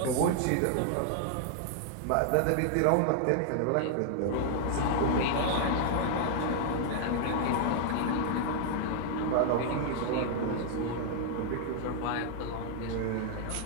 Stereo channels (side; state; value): both; different; correlation -0.01